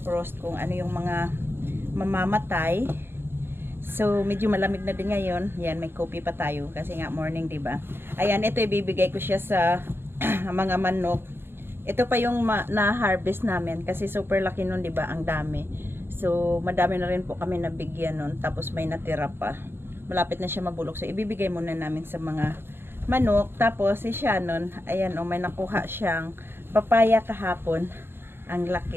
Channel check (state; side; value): late; left; 0.11 ms